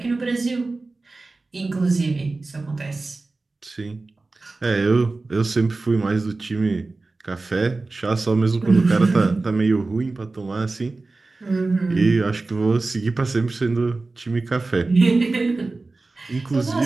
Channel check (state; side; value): quieter; left; 3.4 dB